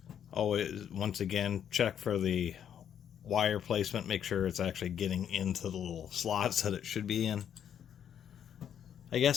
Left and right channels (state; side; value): quieter; right; 9.1 dB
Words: Always, once again, check for the wire placement, make sure it's actually getting into the little slots that it should be in. I